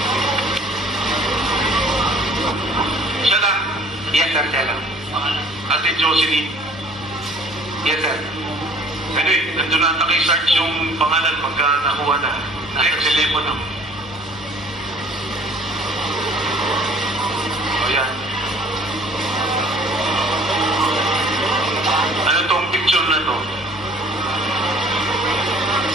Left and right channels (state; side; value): normal; both; correlation 0.53